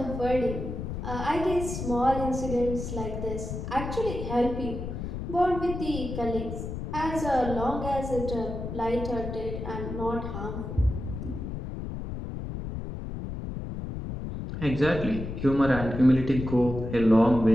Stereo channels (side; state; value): left; noise; rumble, 6 dB below the sound